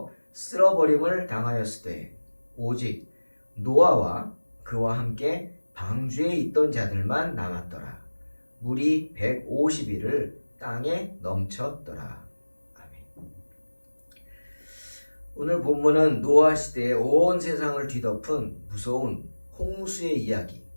쓸어버림을 당하였으되 오직 노아와 그와 함께 방주에 있던 자들만 남았더라 물이 150일을 땅에 넘쳤더라 아멘. 오늘 본문은 노아 시대의 온 세상을 뒤덮은 무서운 홍수의 이야기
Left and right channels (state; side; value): inverted; both; correlation -1.00